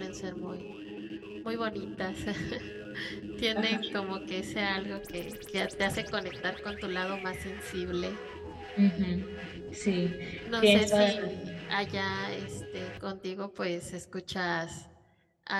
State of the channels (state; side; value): identical; both; correlation 1.00